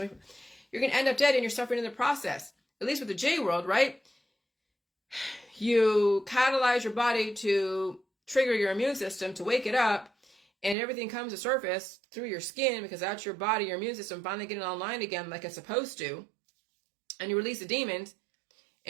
from you, you're going to end up dead and you're suffering in the process. At least with the J world, right? You catalyze your body to trigger your immune system to wake it up, and everything comes to surface through your skin because that's your body, your immune system finally getting online again like it's supposed to. And you release the demons,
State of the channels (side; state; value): left; drops out; at 10.8 s